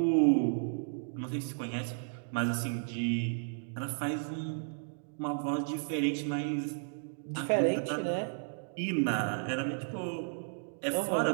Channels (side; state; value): left; silent; digital silence